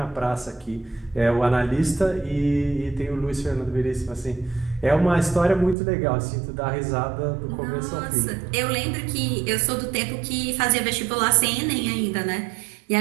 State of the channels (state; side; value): drops out; left; at 5.8 s